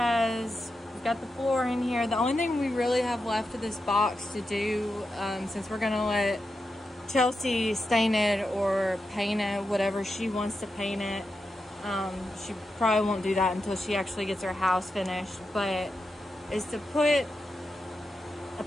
got the floor in here. The only thing we really have left of this box to do, since we're gonna let Chelsea stain it or paint it, whatever she wants to paint it. She probably won't do that until she actually gets her house finished, but is to put a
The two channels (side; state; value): both; normal; correlation 0.88